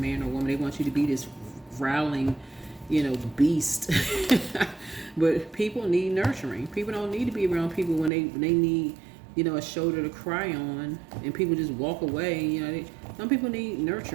or a woman. They want you to be this growling, beast. But people need nurturing. People don't need to be around people when they need, a shoulder to cry on, and people just walk away. Some people need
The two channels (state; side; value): drops out; left; at 8.1 s